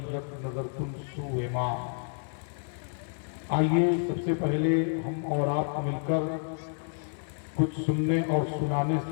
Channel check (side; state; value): right; silent; digital silence